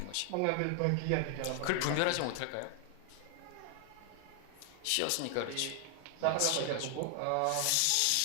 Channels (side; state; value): both; different; correlation 0.00